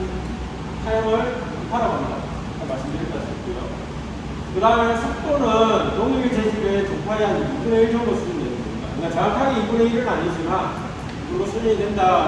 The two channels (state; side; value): identical; both; correlation 1.00